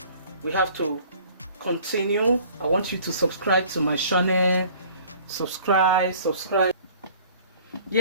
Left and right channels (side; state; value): both; inverted; correlation -0.51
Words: we have to continue. I want you to subscribe to my channel. Subscribe.